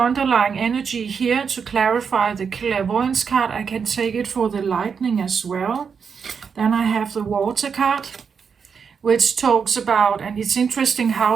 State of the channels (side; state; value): left; quieter; 6.3 dB